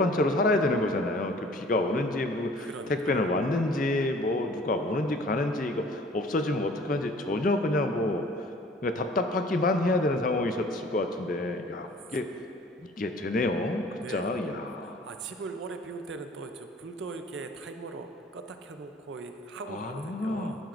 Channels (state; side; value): normal; both; correlation 0.51